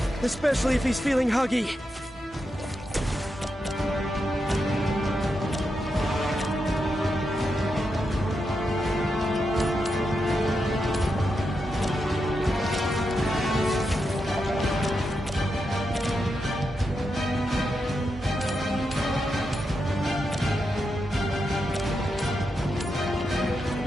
especially if he's feeling huggy.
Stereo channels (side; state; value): both; normal; correlation 0.86